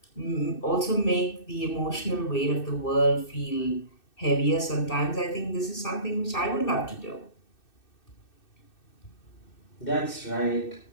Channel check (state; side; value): late; right; 2.6 ms